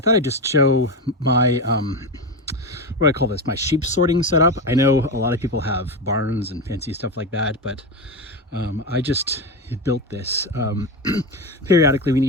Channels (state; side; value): normal; both; correlation 0.17